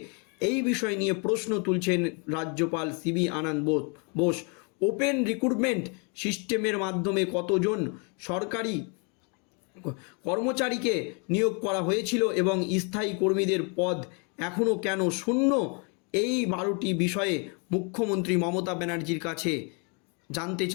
এই বিষয় নিয়ে প্রশ্ন তুলছেন রাজ্যপাল সিবি আনন্দ বোস। ওপেন রিক্রুটমেন্ট সিস্টেমের মাধ্যমে কতজন সরকারি কর্মচারীকে নিয়োগ করা হয়েছিল এবং স্থায়ী কর্মীদের পদ এখনও কেন শূন্য, এই 12টি বিষয়ে মুখ্যমন্ত্রী মমতা ব্যানার্জির কাছে জানতে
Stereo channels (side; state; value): right; quieter; 35.3 dB